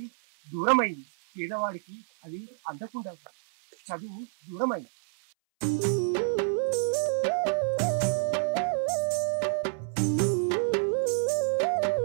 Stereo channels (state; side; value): silent; left; 59 dB below the other